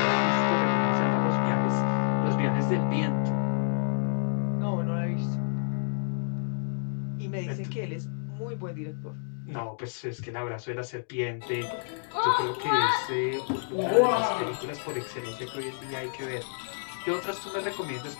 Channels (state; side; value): silent; right; digital silence